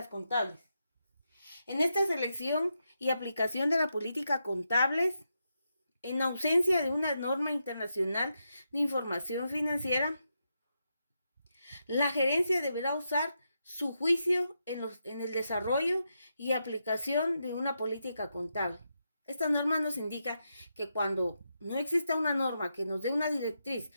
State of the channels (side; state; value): both; inverted; correlation -0.84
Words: contables. En esta selección y aplicación de la política contables, en ausencia de una norma internacional de información financiera, la gerencia deberá usar su juicio en el desarrollo y aplicación de una política contable. Esta norma nos indica que cuando no exista una norma que nos dé una directriz